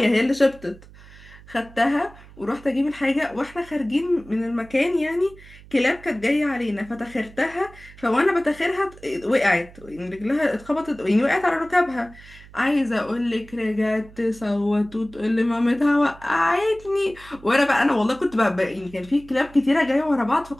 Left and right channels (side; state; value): right; noise; hum, 21 dB below the sound